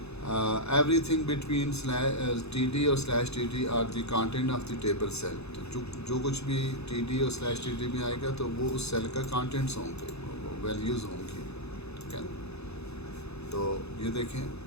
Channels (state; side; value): normal; both; correlation -0.05